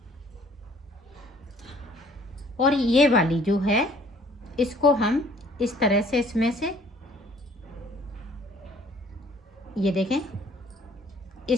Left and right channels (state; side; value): normal; both; correlation 0.57